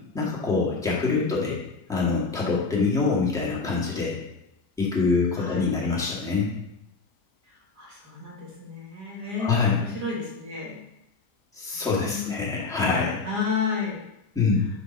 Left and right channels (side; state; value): right; quieter; 4.2 dB